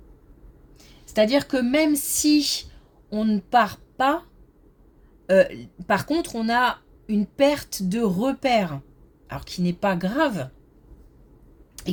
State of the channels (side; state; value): both; identical; correlation 1.00